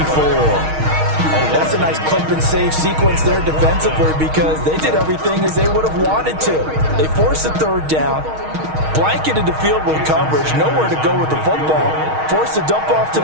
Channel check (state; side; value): late; left; 6.4 ms